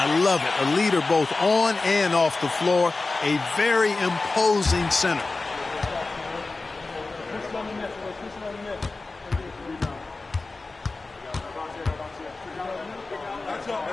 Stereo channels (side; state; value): right; quieter; 3.5 dB